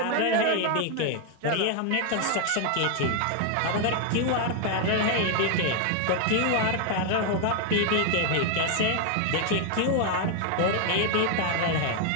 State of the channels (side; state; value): both; different; correlation 0.01